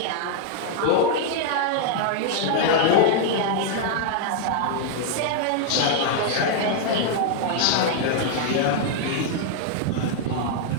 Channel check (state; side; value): different; both; correlation 0.00